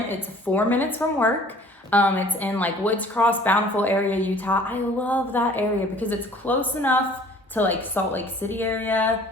It's 4 minutes from work. It's in like Woods Cross, Bountiful area, Utah. I love that area because it's close enough to like Salt Lake City area.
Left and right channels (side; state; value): both; normal; correlation 0.52